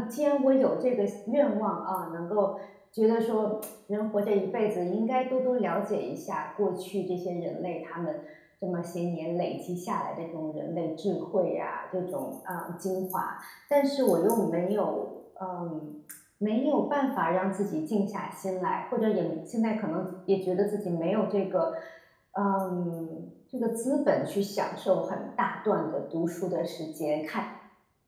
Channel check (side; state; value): both; identical; correlation 1.00